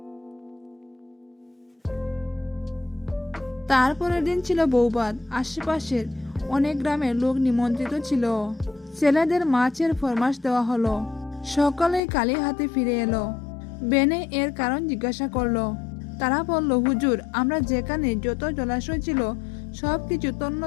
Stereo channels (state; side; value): drops out; right; at 12.0 s